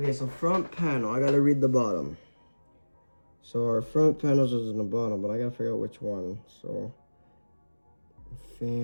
so front panel, I gotta read the bottom. So our front panels is in the bottom, but I gotta figure out which one. So,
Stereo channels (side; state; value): both; inverted; correlation -1.00